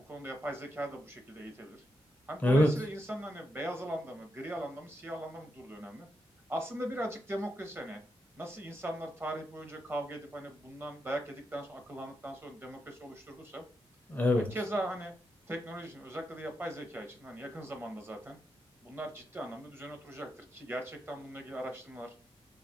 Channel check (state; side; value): normal; both; correlation 0.84